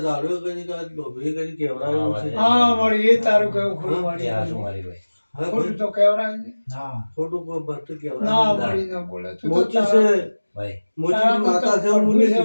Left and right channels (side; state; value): both; inverted; correlation -1.00